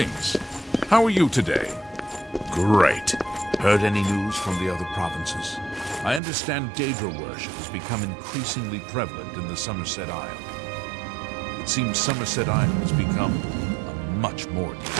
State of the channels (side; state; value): left; drops out; at 6.2 s